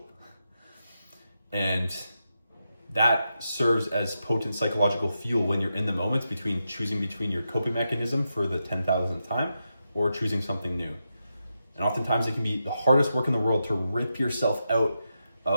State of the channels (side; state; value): both; inverted; correlation -0.86